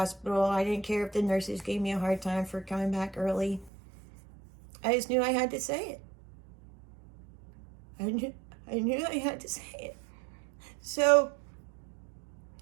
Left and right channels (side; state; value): left; drops out; at 3.7 s